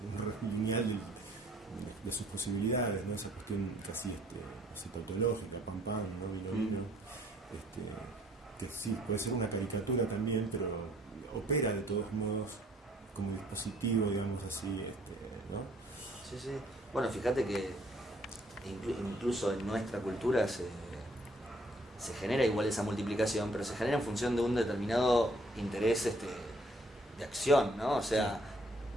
lineal de sus posibilidades, ¿no? Esa cuestión casi tautológica, pam pam, ¿no? Vino, que sí, puede ser una caricatura también, pero opera de todos modos como dispositivo, digamos así, ¿no? Sí, sí. Bueno, fíjate que incluso en nuestra cultura se genera igual esa multiplicación, pero se genera en función de un determinado interés de acción, ¿no? O sea,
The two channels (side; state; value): both; normal; correlation 0.62